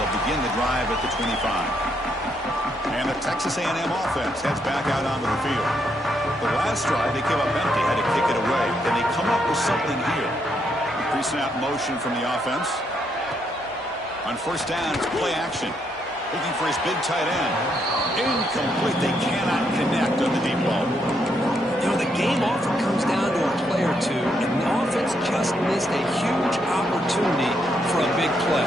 begin the drive at the 25. And the Texas A&M offense heads back out onto the field. The last drive, they came up empty, had to kick it away. Then they come up with something here. Pre-snap motion from the offense. On 1st down, it's play action. Looking for his big tight end. Incomplete. They cannot connect on the deep ball. You know, the game often comes down to a play or two, and the offense just missed a huge opportunity for a big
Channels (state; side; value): normal; both; correlation 0.76